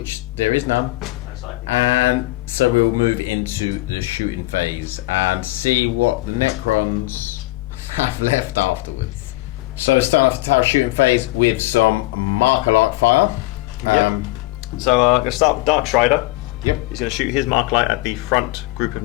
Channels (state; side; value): quieter; right; 19.7 dB